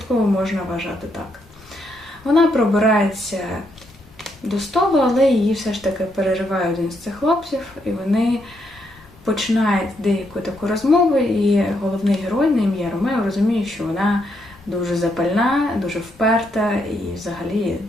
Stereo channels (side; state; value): both; normal; correlation 0.77